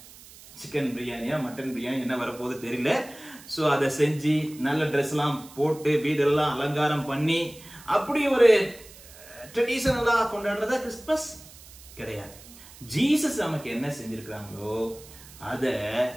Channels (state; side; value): noise; right; hiss, 20 dB below the sound